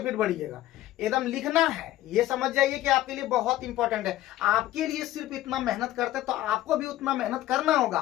फिर बढ़िएगा। एकदम लिखना है, ये समझ जाइए कि आपके लिए बहुत इंपॉर्टेंट है। आपके लिए सिर्फ इतना मेहनत करते हैं तो आपको भी उतना मेहनत करना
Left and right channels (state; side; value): quieter; right; 14.8 dB